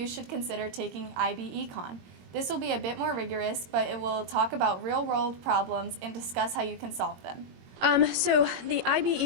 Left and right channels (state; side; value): late; left; 22 ms